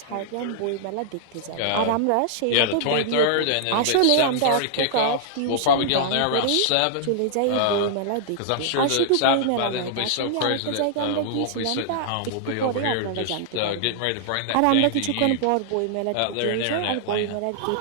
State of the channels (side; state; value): both; different; correlation -0.01